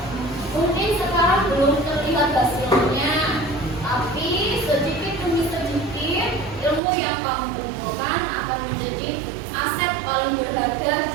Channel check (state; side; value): drops out; left; at 6.8 s